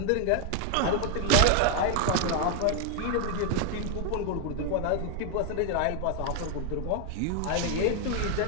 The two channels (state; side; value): different; both; correlation 0.00